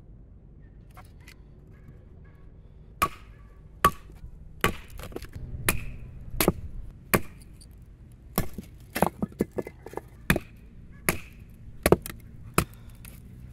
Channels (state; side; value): identical; both; correlation 1.00